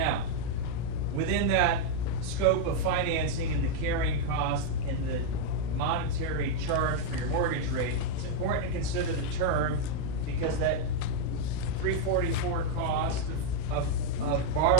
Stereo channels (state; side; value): different; both; correlation 0.00